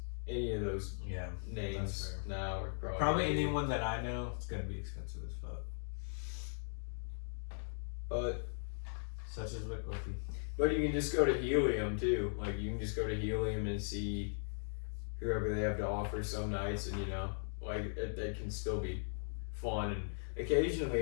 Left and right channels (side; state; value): right; silent; digital silence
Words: any of those names now are probably anyone that I know it's gonna be expensive as fuck. But such as Wickliffe. But you can just go to Helium too. Like you can just go to Helium and see whoever they have to offer some nights, and like it can still be fun. And